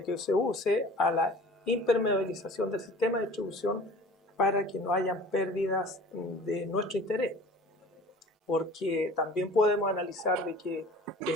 que se use, a la impermeabilización del sistema de distribución para que no hayan pérdidas de nuestro interés. Porque también podemos analizar de que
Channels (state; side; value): normal; both; correlation 0.44